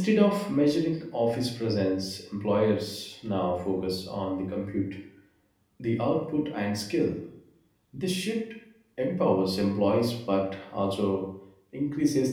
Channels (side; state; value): both; identical; correlation 1.00